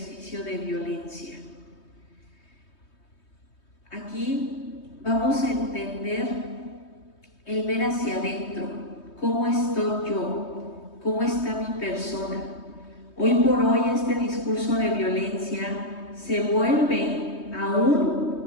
de violencia? Aquí vamos a entender el ver hacia adentro, cómo estoy yo, cómo está mi persona. Hoy por hoy este discurso de violencia se vuelve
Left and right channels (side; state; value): right; late; 3.2 ms